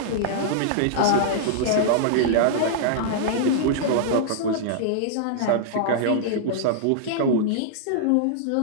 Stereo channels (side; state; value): both; different; correlation -0.02